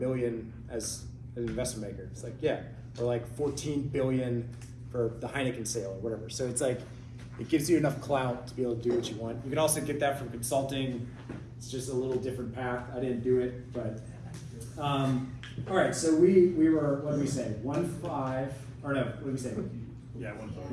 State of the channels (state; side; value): identical; both; correlation 1.00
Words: as an investment maker. It's like, yeah, or like 14 billion for the Heineken sale or whatever. So it's like, it gives you enough clout to be able to do what you want. You can also get that from consulting. It's just a little different path. I didn't do it, but all right. So we were, what did we say? 1.5 or no? What did we say? Yeah,